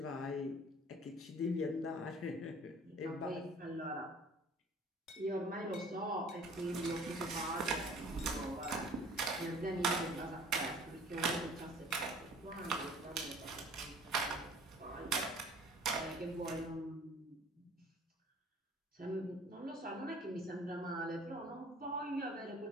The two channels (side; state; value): both; normal; correlation 0.50